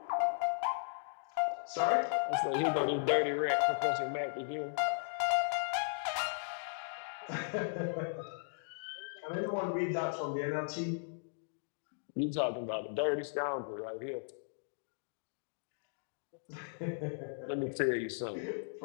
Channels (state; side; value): silent; right; digital silence